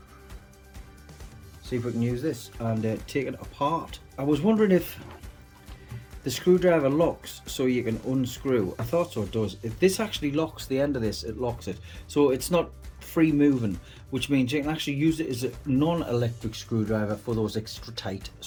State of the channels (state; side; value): identical; both; correlation 1.00